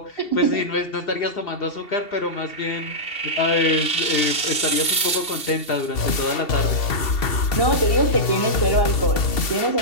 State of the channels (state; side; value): late; right; 2.7 ms